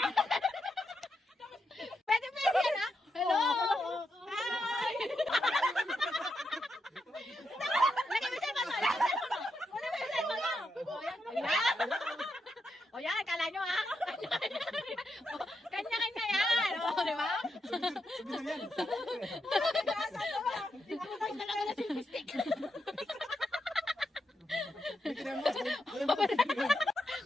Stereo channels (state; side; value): normal; both; correlation 0.83